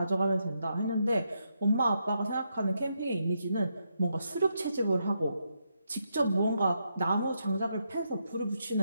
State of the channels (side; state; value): both; inverted; correlation -0.81